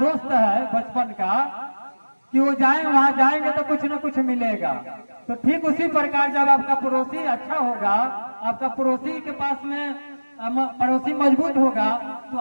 है बचपन का कि वो वहां जाएंगे तो कुछ न कुछ मिलेगा। तो ठीक उसी प्रकार जब आपका पड़ोसी अच्छा होगा, आपका पड़ोसी के पास में पड़ोसी मजबूत होगा, तो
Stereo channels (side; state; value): both; inverted; correlation -1.00